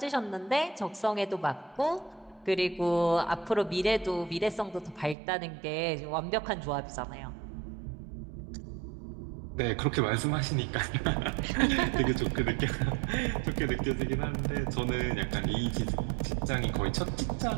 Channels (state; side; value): drops out; left; at 5.2 s